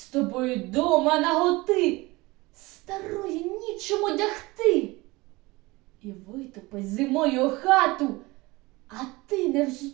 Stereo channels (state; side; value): quieter; left; 22.2 dB